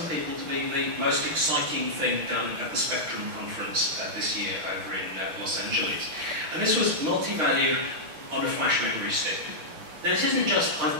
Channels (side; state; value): left; late; 6.5 ms